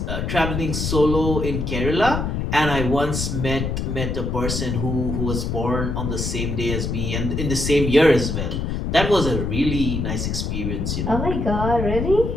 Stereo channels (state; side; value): noise; left; rumble, 2 dB below the sound